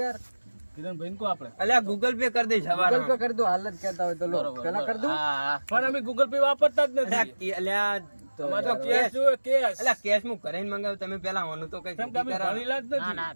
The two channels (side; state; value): both; inverted; correlation -1.00